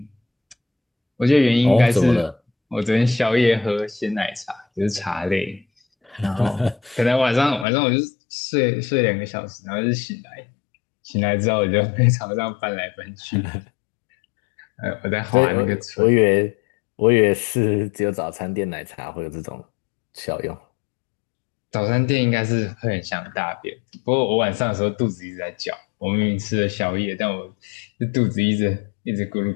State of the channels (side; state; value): right; drops out; at 7.7 s